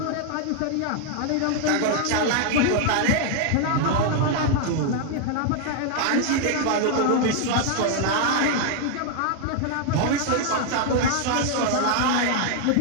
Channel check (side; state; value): both; different; correlation 0.00